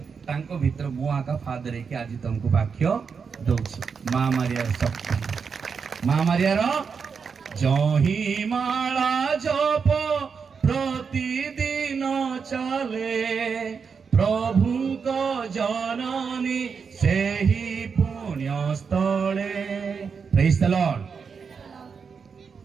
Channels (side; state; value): left; quieter; 5.8 dB